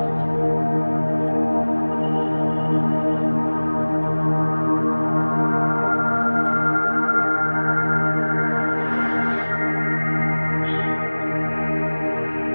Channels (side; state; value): both; inverted; correlation -1.00